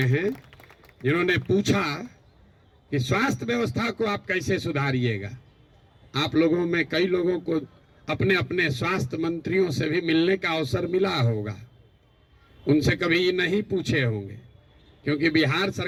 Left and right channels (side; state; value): both; identical; correlation 1.00